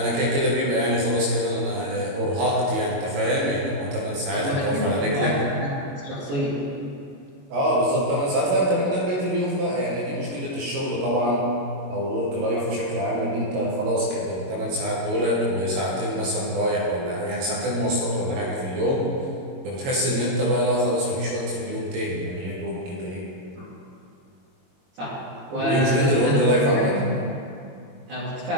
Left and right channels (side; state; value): left; late; 22 ms